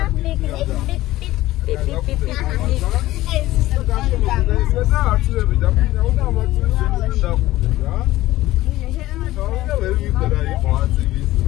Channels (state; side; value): quieter; right; 16.4 dB